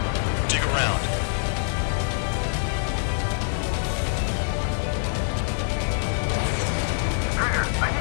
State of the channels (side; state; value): right; silent; 62 dB below the other